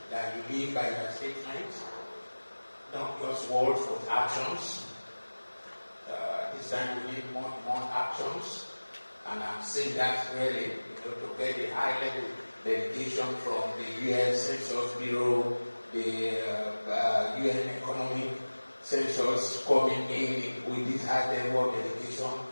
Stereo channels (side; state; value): both; inverted; correlation -1.00